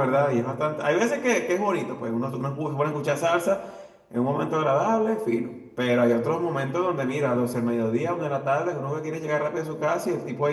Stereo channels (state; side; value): identical; both; correlation 1.00